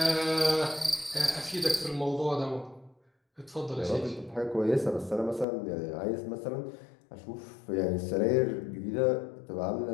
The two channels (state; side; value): drops out; right; at 5.5 s